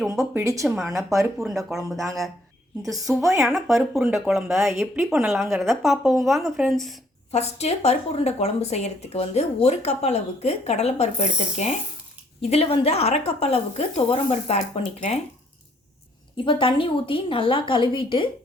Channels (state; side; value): normal; both; correlation 0.66